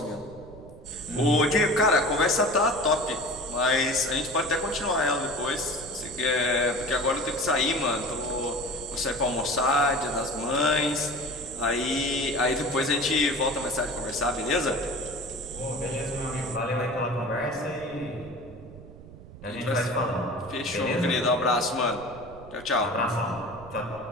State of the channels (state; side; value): noise; right; rumble, 18 dB below the sound